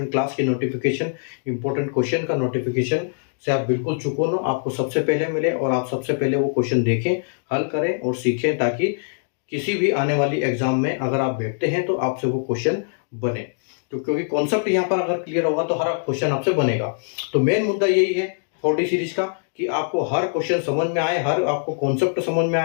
क्लास की नोटिफिकेशन, इंपॉर्टेंट क्वेश्चन का नोटिफिकेशन से आप बिल्कुल चूको ना, आपको सबसे पहले मिले और आप सबसे पहले वो क्वेश्चन देखें, हल करें और सीखें, ताकि किसी भी आने वाली एग्जाम में अगर आप बैठते हैं तो आपसे वो क्वेश्चन बने। तो क्योंकि कॉन्सेप्ट यहाँ पर अगर क्लियर होगा तो हर क्वेश्चन आपसे बनेगा। तो मेन मुद्दा यही है 4D सीरीज का, कि आपको हर क्वेश्चन समझ में आए, हर आपको कॉन्सेप्ट समझ में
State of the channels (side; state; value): right; silent; digital silence